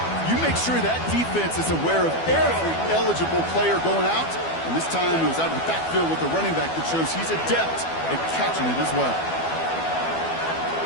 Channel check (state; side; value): late; right; 12 ms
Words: You make sure that defense is aware of every eligible player going out. And this time it was out of the backfield with the running back that shows he's adept at catching it as well.